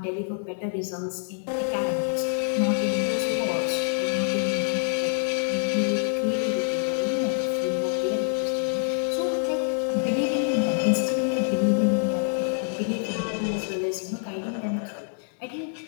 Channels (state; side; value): silent; right; digital silence